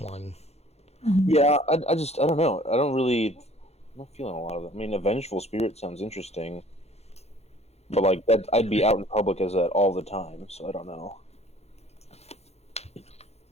Yeah, I don't know. I'm not feeling a lot of it. I mean, a vengeful spirit sounds interesting, but like that, I'd be out in public as that all the time, so I don't know.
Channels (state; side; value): late; right; 0.31 ms